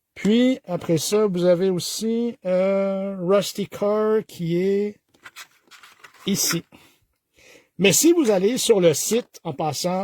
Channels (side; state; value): both; identical; correlation 1.00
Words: Puis, après ça, vous avez aussi Rusty Car qui est ici. Mais si vous allez sur le site, en